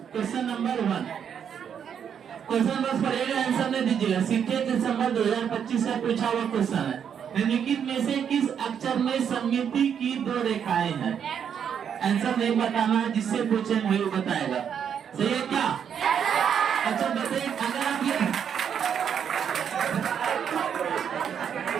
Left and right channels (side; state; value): left; quieter; 8.0 dB